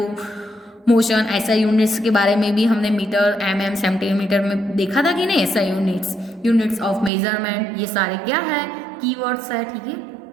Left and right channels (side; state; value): left; drops out; at 7.1 s